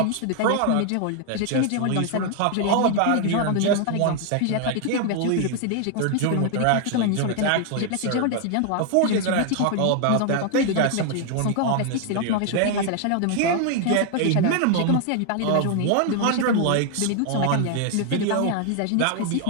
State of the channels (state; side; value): different; both; correlation 0.00